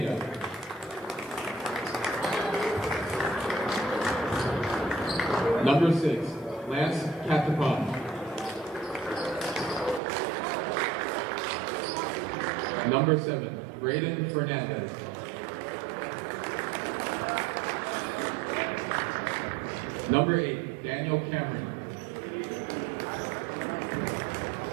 Number 6, Lance Catapon. Number 7, Braden Fernandez. Number 8, Daniel Cameron.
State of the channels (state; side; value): drops out; left; at 10.0 s